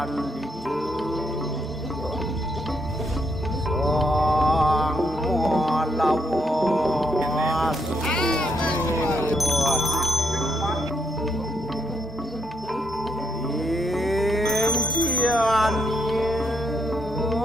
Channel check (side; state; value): both; normal; correlation 0.76